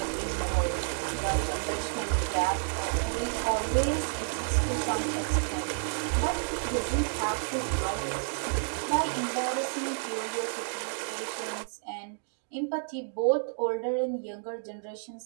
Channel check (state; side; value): silent; left; digital silence